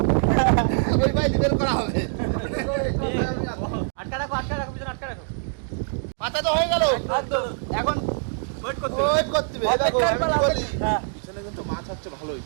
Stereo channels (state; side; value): silent; left; digital silence